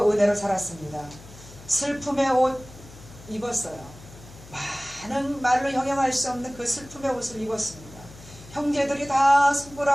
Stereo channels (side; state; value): left; noise; hum, 19 dB below the sound